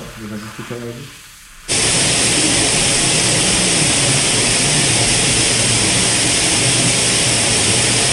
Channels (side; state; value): both; identical; correlation 1.00